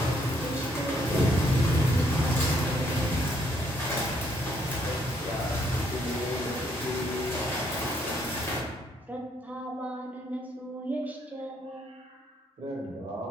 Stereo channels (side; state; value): both; normal; correlation 0.70